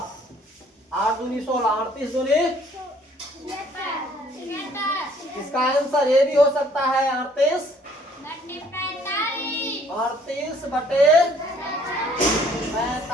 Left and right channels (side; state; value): both; normal; correlation 0.60